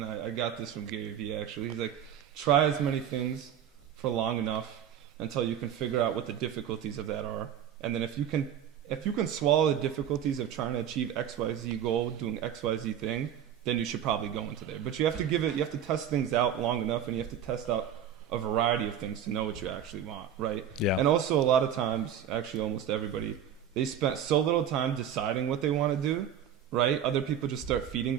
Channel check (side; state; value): left; quieter; 9.1 dB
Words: I got this from Gary Vee actually. He's like, try as many things for long enough until you can figure out what the difficulties of that are, and then if you can swallow the difficulties of trying to achieve XYZ goal, doing XYZ thing, then you should probably go into there. But you have to test things out long enough, and you have to test out a variety of things to know what you actually want, right? Yeah. And also a lot of times, actually almost everybody, they spent so little time deciding what they want to do, right? Other people just start feeding